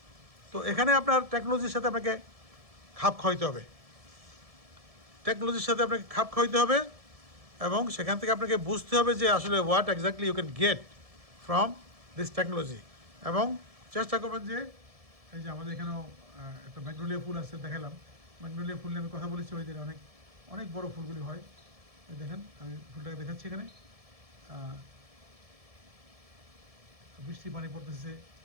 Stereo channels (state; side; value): late; left; 1.7 ms